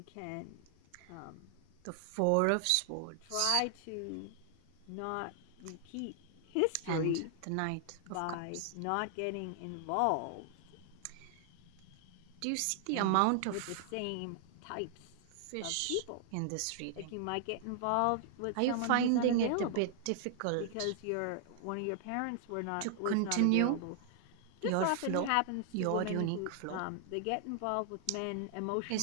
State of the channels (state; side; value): different; both; correlation 0.00